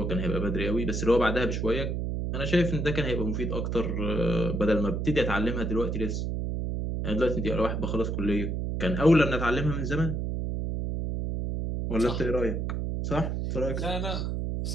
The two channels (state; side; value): noise; right; hum, 1 dB below the sound